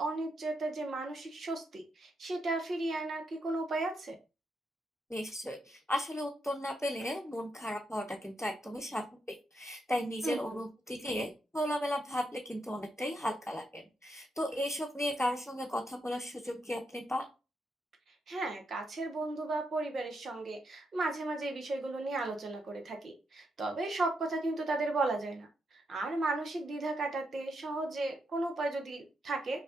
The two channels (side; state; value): both; normal; correlation 0.81